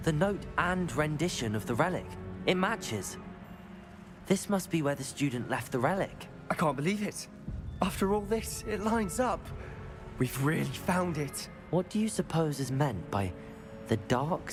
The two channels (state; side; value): identical; both; correlation 1.00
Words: The note and rendition of the relic. It matches. This must be where the student left the relic. I can't believe it. After all this, it lines up. We've really found it. What do you suppose is meant by the dark